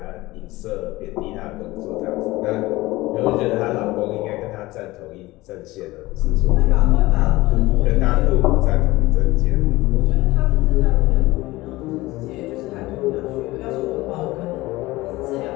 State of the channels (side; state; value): right; quieter; 19.4 dB